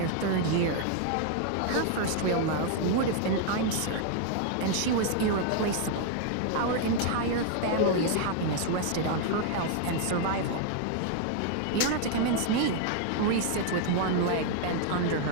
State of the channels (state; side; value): different; both; correlation 0.00